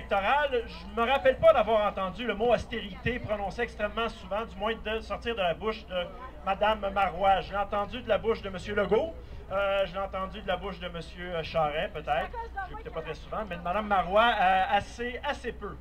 je ne me rappelle pas d'avoir entendu le mot austérité prononcé extrêmement souvent, du moins de sortir de la bouche de Mme Marois. Je l'ai entendu de la bouche de M. Legault. Je l'ai entendu de la bouche de M. Charest, peut-être. Je l'écoutais pas très souvent, mais de Mme Marois, assez peu.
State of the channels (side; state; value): both; identical; correlation 1.00